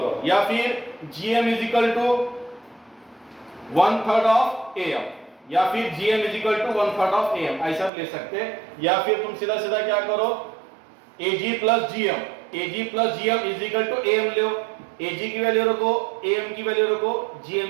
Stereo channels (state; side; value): drops out; left; at 7.9 s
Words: या फिर GM is equal to 1/3 of AM, या फिर GM is equal to 1/3 of AM, ऐसा ले सकते हैं, या फिर तुम सीधा सीधा क्या करो AG plus GM, AG plus GM is equal to AM लो, एजी की वैल्यू रखो, एएम की वैल्यू रखो,